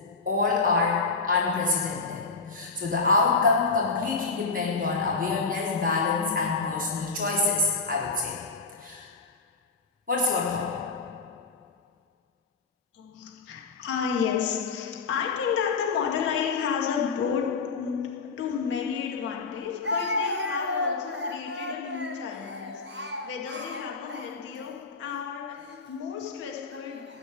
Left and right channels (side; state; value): right; quieter; 4.4 dB